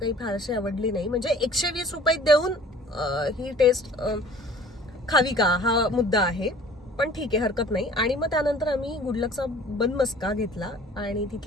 फारशी आवडली नाही. म्हणजे 120 रुपये देऊन ही टेस्ट खावी का हा मुद्दा आहे, पण ठीक आहे हरकत नाही. आणि मग त्यानंतर आम्ही गुडलकचा बनमस्का घेतला आणि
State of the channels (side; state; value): both; normal; correlation 0.49